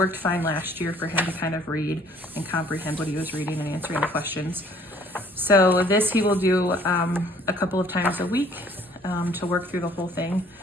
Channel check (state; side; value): normal; both; correlation 0.58